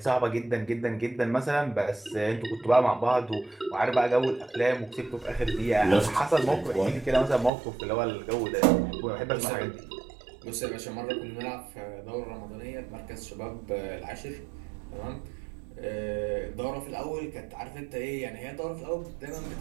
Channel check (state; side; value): drops out; left; at 7.5 s